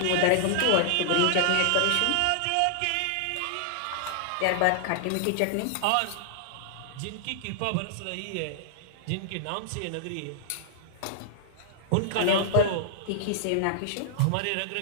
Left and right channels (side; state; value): both; different; correlation -0.01